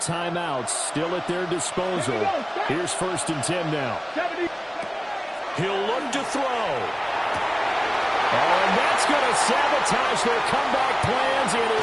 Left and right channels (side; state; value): both; identical; correlation 1.00